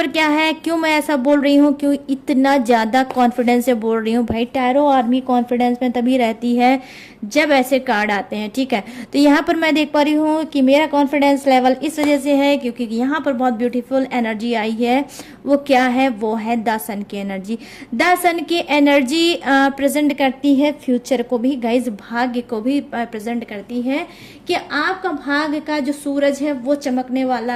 क्या है, क्यों मैं ऐसा बोल रही हूँ, क्यों इतना ज़्यादा कॉन्फिडेंस से बोल रही हूँ भाई। टैरो आर्मी कॉन्फिडेंस में तभी रहती है जब ऐसे कार्ड आते हैं। ठीक है, तो यहाँ पर मैं देख पा रही हूँ कि मेरा कॉन्फिडेंस लेवल इस वजह से है क्योंकि यहाँ पर बहुत ब्यूटीफुल एनर्जी आई है। वो क्या है, वो है द सन की एनर्जी। द सन की एनर्जी प्रेजेंट करती है फ्यूचर को भी गाइज, भाग्य को भी प्रेजेंट करती है कि आपका भाग्य का जो सूरज है वो चमकने वाला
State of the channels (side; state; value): both; identical; correlation 1.00